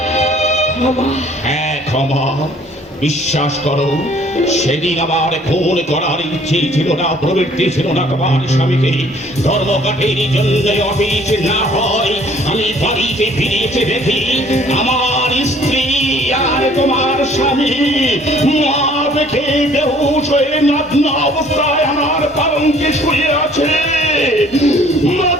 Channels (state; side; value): normal; both; correlation 0.56